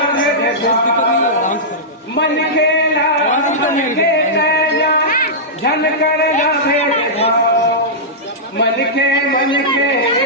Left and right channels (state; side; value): normal; both; correlation -0.13